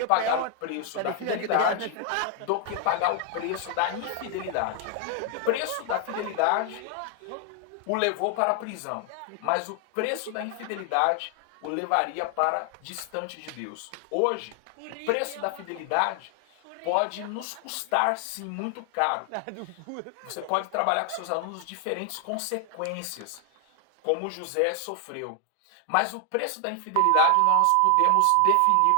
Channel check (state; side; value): different; both; correlation 0.00